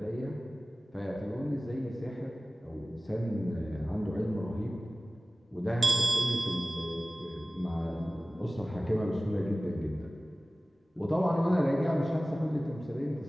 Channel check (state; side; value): normal; both; correlation 0.97